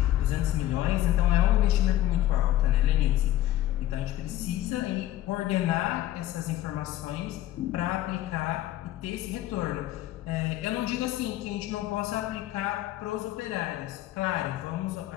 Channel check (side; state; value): right; quieter; 14.1 dB